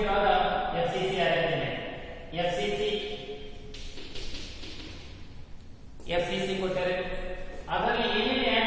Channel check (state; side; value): identical; both; correlation 1.00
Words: draw the FCC arrangement. FCC ಕೊಟ್ಟರೆ ಅದರಲ್ಲಿ ಏನೇನು